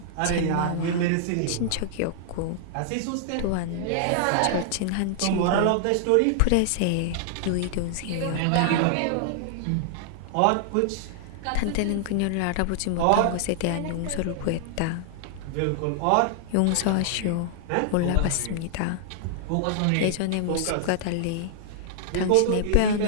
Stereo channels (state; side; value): different; both; correlation -0.01